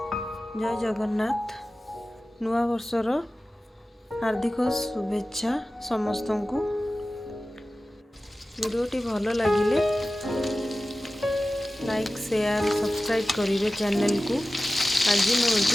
जय जगन्नाथ। नुआ वर्षर हार्दिक शुभेच्छा समस्त को। वीडियोटी भल लगिले लाइक शेयर सब्सक्राइब करेंगे चैनल को। आज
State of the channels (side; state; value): both; normal; correlation 0.95